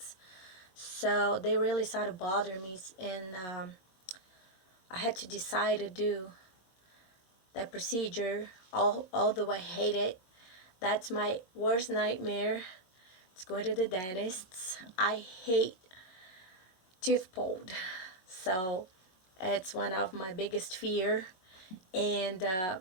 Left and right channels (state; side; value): late; right; 22 ms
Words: So they really started bothering me, and I had to decide to do that procedure. Although I hate it, that's my worst nightmare. It's going to the dentist. I hate tooth pulled. So it's one of my biggest fear, and